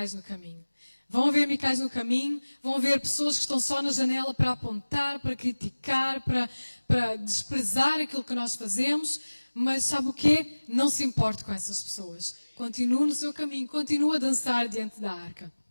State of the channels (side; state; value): both; inverted; correlation -1.00